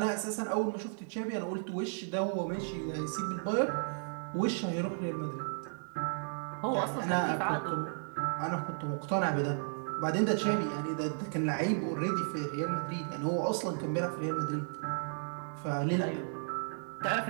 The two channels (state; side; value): silent; left; digital silence